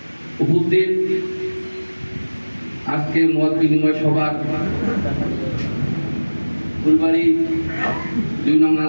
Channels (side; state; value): both; inverted; correlation -1.00